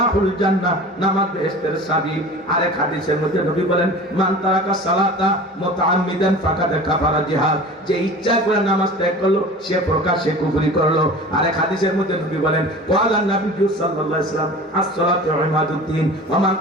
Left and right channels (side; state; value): both; normal; correlation 0.38